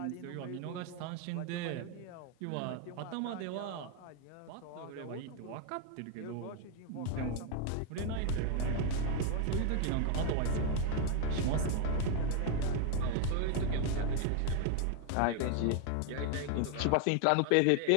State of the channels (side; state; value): both; different; correlation 0.00